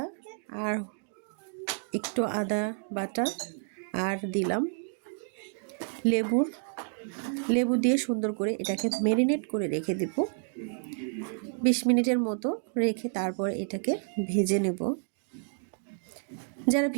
আর একটু আদা বাটা, আর দিলাম লেবু দিয়ে সুন্দর করে এটাকে ম্যারিনেট করে রেখে দেব 20 মিনিটের মতো রেখে তারপর এটাকে ভেজে নেব। যারা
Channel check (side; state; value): left; silent; 57 dB below the other